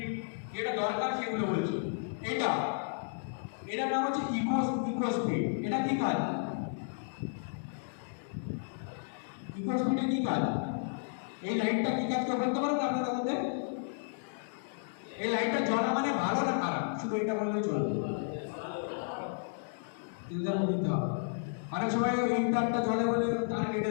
যেটা দরকার সেগুলো বলছি। এটার নাম হচ্ছে ইকো স্পিড। এটা কি কাজ, ইকো স্পিডে কি কাজ, এই লাইটটা কি কাজ করে বলতে পারবেন আপনাদের মধ্যে? এই লাইটটা জ্বলা মানে ভালো না খারাপ, শুধু এটা বললে চলবে, দিতে হবে। অনেক সময় এই তারটা জ্বলে বলে তার কেটে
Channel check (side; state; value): right; silent; digital silence